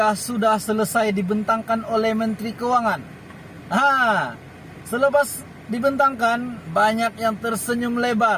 sudah selesai dibentangkan oleh Menteri Keuangan. Selepas dibentangkan, banyak yang tersenyum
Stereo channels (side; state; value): both; identical; correlation 1.00